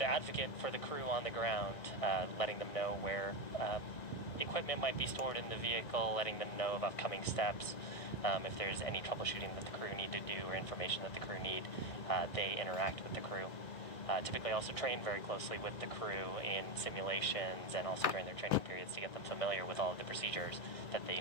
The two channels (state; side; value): late; right; 2.0 ms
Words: for the crew on the ground, letting them know where equipment might be stored in the vehicle, letting them know of upcoming steps. If there's any troubleshooting that the crew need to do or information that the crew need, they interact with the crew. Typically also train very closely with the crew in simulations and also during their training periods to get them familiar with all of the procedures that they